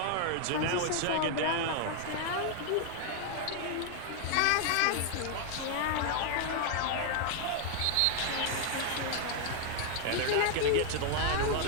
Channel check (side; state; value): both; different; correlation 0.00